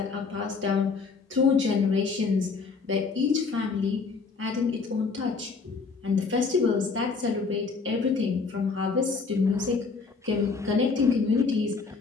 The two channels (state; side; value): quieter; right; 4.7 dB